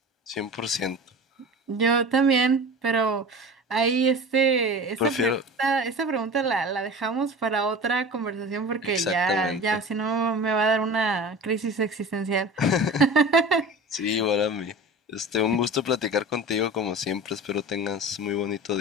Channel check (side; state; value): both; normal; correlation 0.35